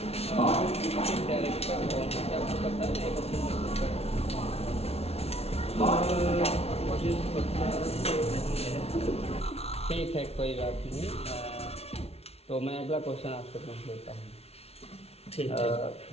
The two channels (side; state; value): right; late; 0.30 ms